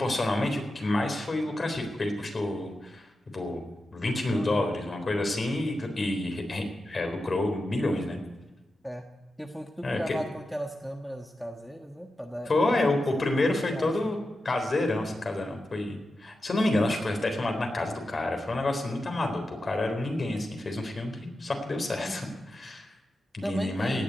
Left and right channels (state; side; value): normal; both; correlation 0.90